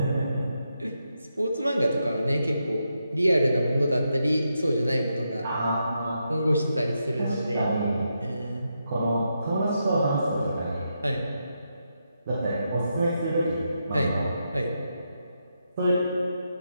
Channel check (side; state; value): both; inverted; correlation -0.84